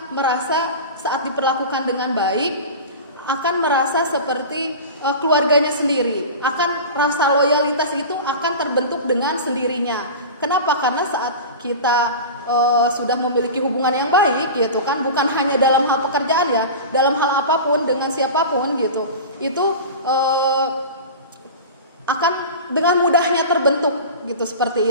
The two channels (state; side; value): inverted; both; correlation -0.31